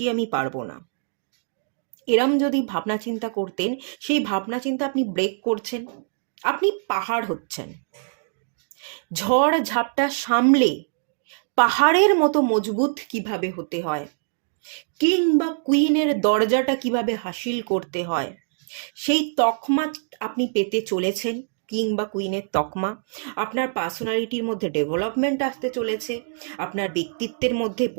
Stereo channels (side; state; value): left; silent; digital silence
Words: আমি পারবো না, এরম যদি ভাবনা চিন্তা করতেন, সেই ভাবনা চিন্তা আপনি ব্রেক করছেন, আপনি পাহাড় হচ্ছেন। ঝড় ঝাপটা সামলে পাহাড়ের মতো মজবুত কিভাবে হতে হয়, কিং বা কুইনের দরজাটা কিভাবে হাসিল করতে হয়, সেই তকমা আপনি পেতে চলেছেন। কিং বা কুইনের তকমা। আপনার পার্সোনালিটির মধ্যে ডেভেলপমেন্ট আসতে চলেছে, আপনার ব্যক্তিত্বের মধ্যে